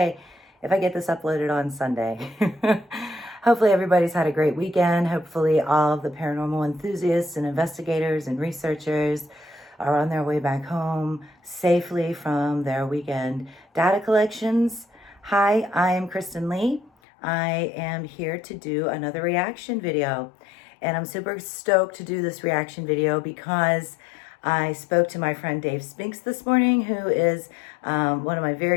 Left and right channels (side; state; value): right; drops out; at 16.9 s